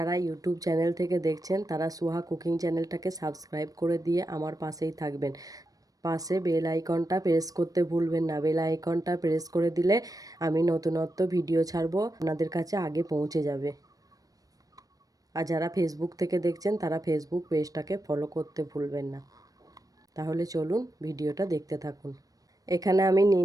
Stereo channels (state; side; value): late; left; 0.18 ms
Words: ইউটিউব চ্যানেল থেকে দেখছেন তারা সুহা কুকিং চ্যানেলটাকে সাবস্ক্রাইব করে দিয়ে আমার পাশেই থাকবেন। পাশে বেল আইকনটা প্রেস করতে ভুলবেন না। বেল আইকনটা প্রেস করে দিলে আমি নতুনত্ব ভিডিও ছাড়বো, আপনাদের কাছে আগে পৌঁছে যাবে। আর যারা ফেসবুক থেকে দেখছেন তারা ফেসবুক পেজটাকে ফলো করতে ভুলবেন না। তাহলে চলুন ভিডিওটা দেখতে থাকুন। এখানে আমি